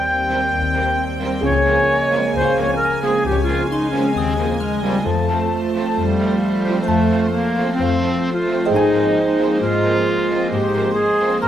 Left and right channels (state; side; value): noise; left; hum, 29 dB below the sound